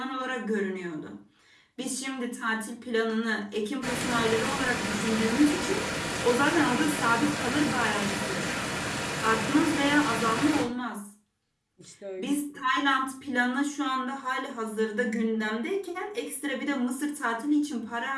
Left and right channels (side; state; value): both; identical; correlation 1.00